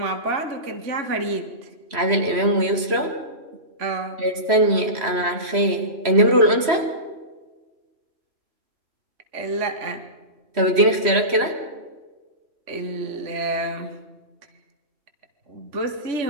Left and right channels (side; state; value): left; late; 3.0 ms